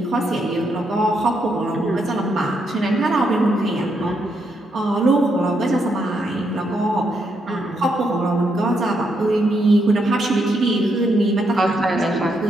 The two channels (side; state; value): both; normal; correlation 0.78